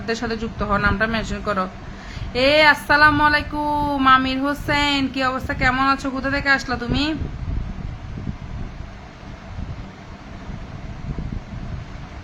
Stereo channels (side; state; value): both; identical; correlation 1.00